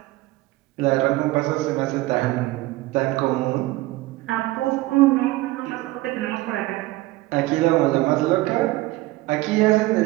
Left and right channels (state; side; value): quieter; left; 18.9 dB